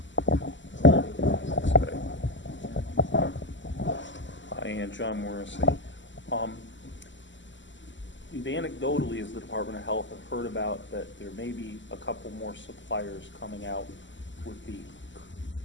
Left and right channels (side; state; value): right; late; 0.54 ms